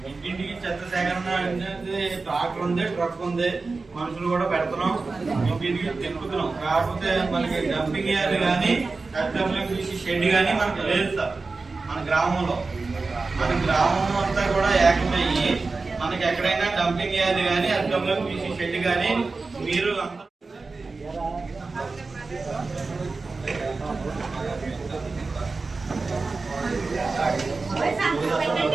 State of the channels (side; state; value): left; quieter; 3.9 dB